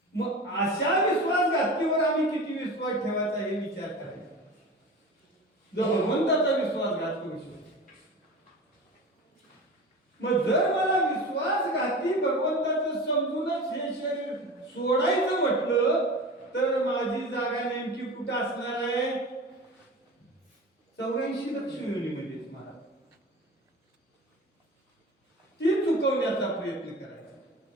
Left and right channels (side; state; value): both; normal; correlation 0.34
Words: मग अशा विश्वासघातीवर आम्ही किती विश्वास ठेवायचा हे विचार करायचा. जो भगवंताचा विश्वासघात करू शकतो. मग जर मला विश्वासघाती भगवंताचं समजूनच हे शरीर सोडायचं म्हटलं, तर माझी जागा नेमकी कुठं असणार आहे? 84 लक्ष योनीमध्येच महाराज. ती चुकवण्याचा प्रयत्न करायचा.